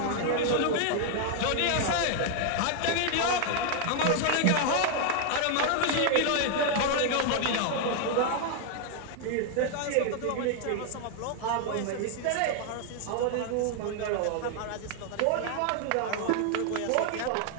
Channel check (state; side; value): different; both; correlation 0.00